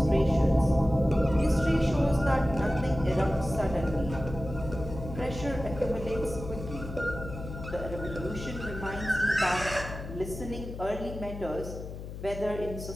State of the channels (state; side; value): noise; left; hum, 10 dB below the sound